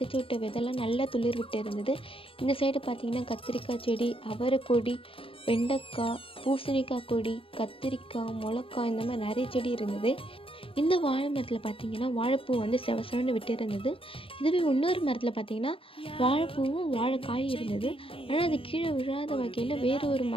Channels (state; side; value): late; right; 0.26 ms